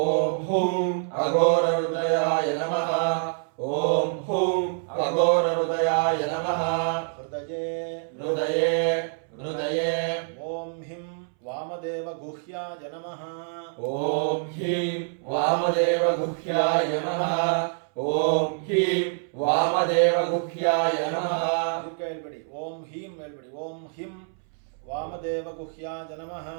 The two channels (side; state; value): left; silent; 61 dB below the other